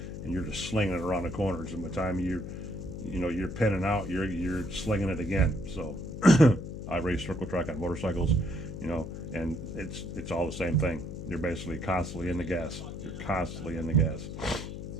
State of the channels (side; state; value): left; noise; hum, 8 dB below the sound